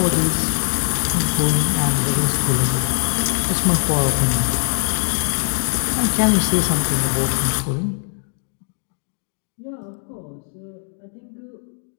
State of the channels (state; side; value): silent; right; digital silence